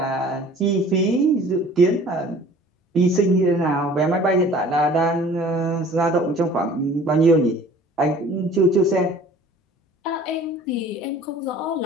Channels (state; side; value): normal; both; correlation 0.49